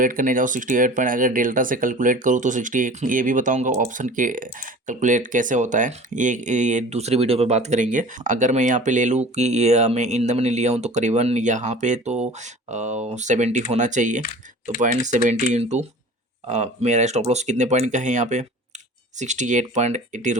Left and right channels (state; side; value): normal; both; correlation 0.41